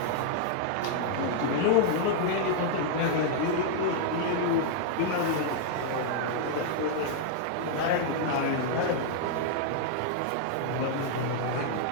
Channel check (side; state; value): both; different; correlation -0.01